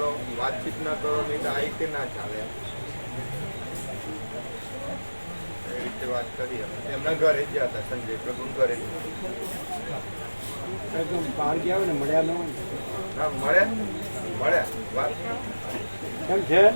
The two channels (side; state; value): both; inverted; correlation -1.00